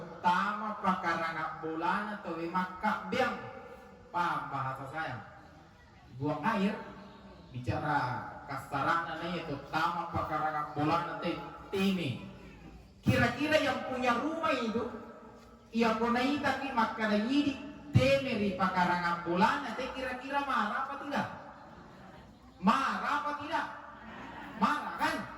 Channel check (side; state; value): both; identical; correlation 1.00